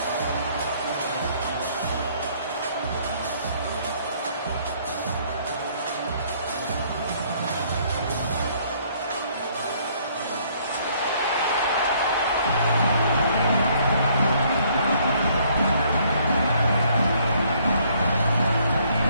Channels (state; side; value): inverted; both; correlation -0.64